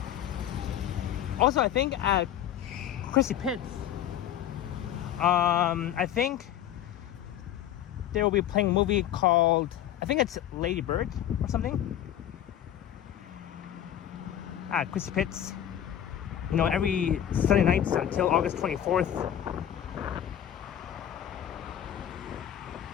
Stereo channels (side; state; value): right; quieter; 10.8 dB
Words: Also, I think at Chrissy Pitts, I think they will be playing a movie called, I think it's Lady Bird or something. At Chrissy Pitts, you know, every Sunday nights until August 24th.